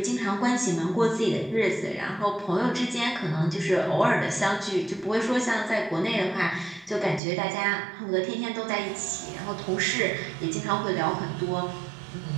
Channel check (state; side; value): drops out; left; at 7.2 s